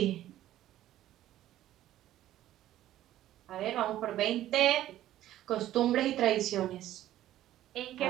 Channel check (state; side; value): quieter; left; 13.4 dB